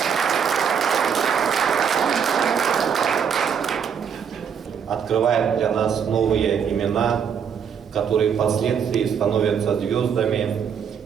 Открывает для нас новые имена, которые впоследствии становятся звездами.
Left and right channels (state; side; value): quieter; left; 7.4 dB